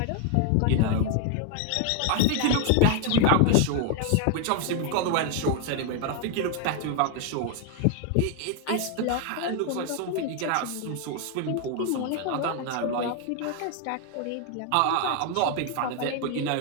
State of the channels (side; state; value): both; different; correlation 0.00